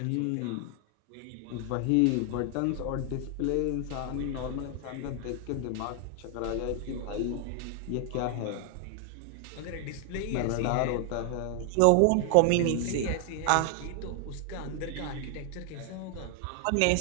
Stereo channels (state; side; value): different; both; correlation 0.00